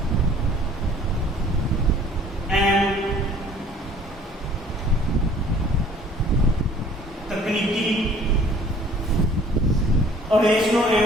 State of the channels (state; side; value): normal; both; correlation 0.53